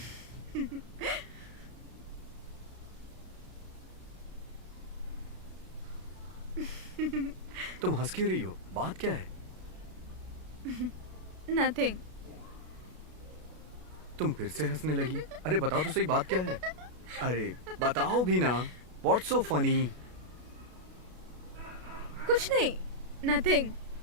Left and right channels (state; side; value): late; left; 33 ms